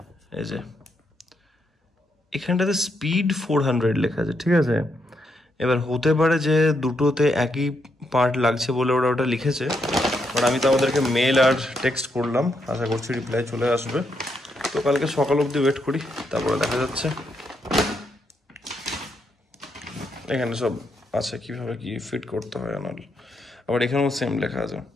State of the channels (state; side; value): normal; both; correlation 0.79